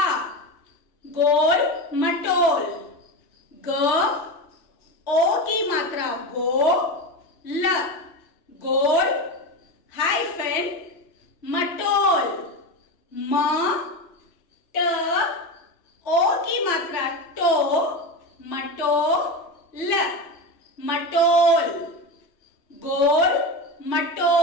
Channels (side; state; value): right; late; 3.0 ms